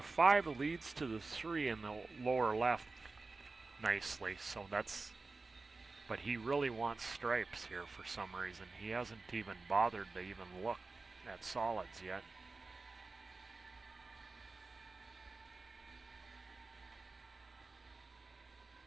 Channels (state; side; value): quieter; left; 3.7 dB